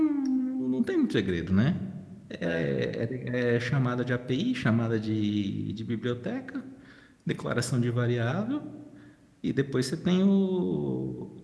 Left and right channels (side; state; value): both; identical; correlation 1.00